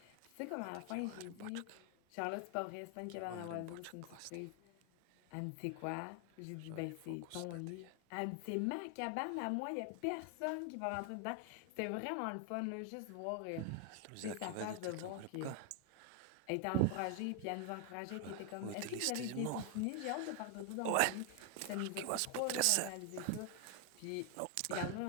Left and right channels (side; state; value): both; different; correlation 0.00